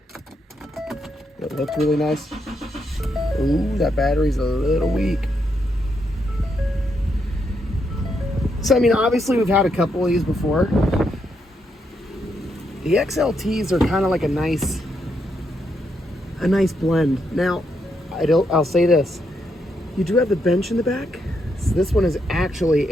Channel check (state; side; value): normal; both; correlation 0.79